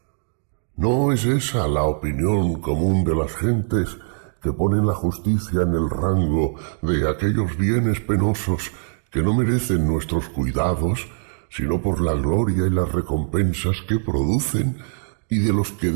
¿No es esa la opinión común de las gentes que ponen la justicia en el rango de aquellos bienes penosos que no merecen nuestros cuidados, sino por la gloria y las recompensas que producen, y de los que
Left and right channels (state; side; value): silent; left; digital silence